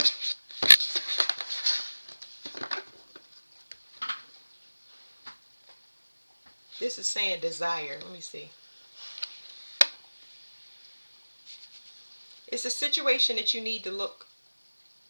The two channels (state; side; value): inverted; both; correlation -1.00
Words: This is saying desire. Let me see. It's a situation that you need to look